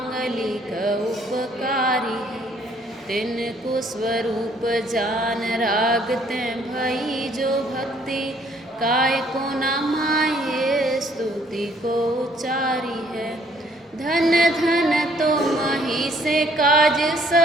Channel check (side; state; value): both; normal; correlation 0.63